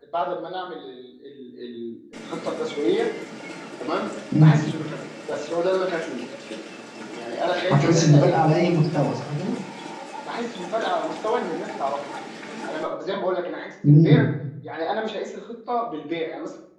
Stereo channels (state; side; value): identical; both; correlation 1.00